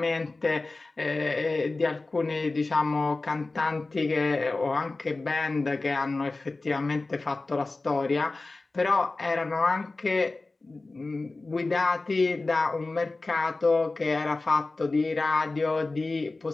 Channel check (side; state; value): right; quieter; 3.3 dB